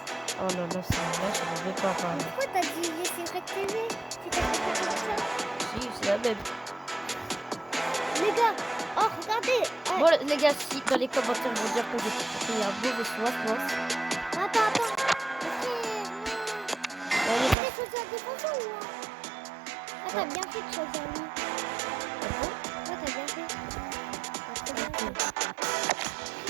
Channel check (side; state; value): left; drops out; at 17.6 s